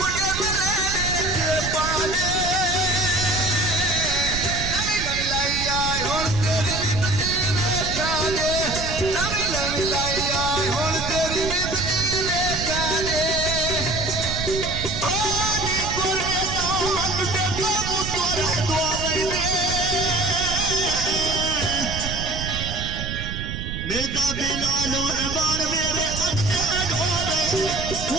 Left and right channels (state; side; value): noise; right; rumble, 6 dB below the sound